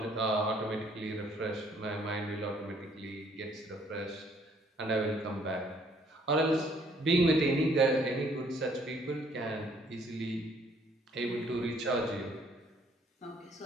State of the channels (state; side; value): normal; both; correlation 0.63